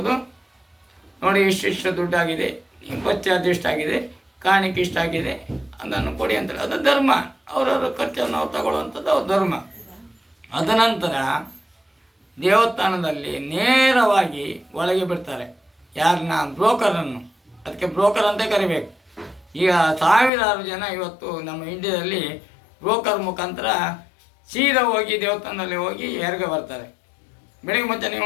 ನೋಡಿ ಇಷ್ಟು ದುಡ್ಡಾಗಿದೆ, ಬಚ್ಚ ಇಷ್ಟಾಗಿದೆ, ಕಾಣಿಕೆ ಇಷ್ಟಾಗಿದೆ, ಅದನ್ನು ಕೊಡಿ ಅಂತೇಳಿ. ಅದು ಧರ್ಮ. ಅವರವರ ಖರ್ಚನ್ನು ಅವ್ರು ತಗೊಳ್ಳುವಂಥದ್ದು ಅವ್ರ ಧರ್ಮ. ಅದನಂತರ ದೇವಸ್ಥಾನದಲ್ಲಿ ನೇರವಾಗಿ ಒಳಗೆ ಬಿಡ್ತಾರೆ ಯಾರನ್ನ, ಬ್ರೋಕರನ್ನು. ಅದಕ್ಕೆ ಬ್ರೋಕರ್ ಅಂತ ಕರಿಬೇಕು. ಈಗ ಸಾವಿರಾರು ಜನ ಇವತ್ತು ನಮ್ಮ ಇಂಡಿಯಾದಲ್ಲಿ ಬ್ರೋಕರ್ ಮುಖಾಂತರ ಸೀದಾ ಹೋಗಿ ದೇವಸ್ಥಾನದಲ್ಲಿ ಹೋಗಿ ಹೆರಿಗೆ ಬರ್ತಾರೆ. ಬೆಳಿಗ್ಗೆ ಮುಂಚೆ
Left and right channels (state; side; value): drops out; right; at 20.3 s